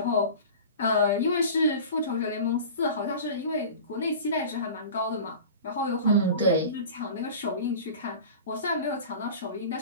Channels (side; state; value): both; inverted; correlation -0.36